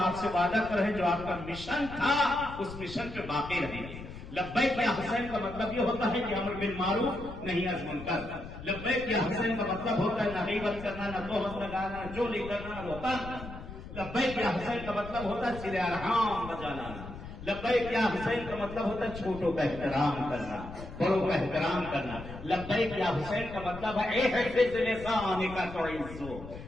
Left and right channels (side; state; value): left; noise; rumble, 12 dB below the sound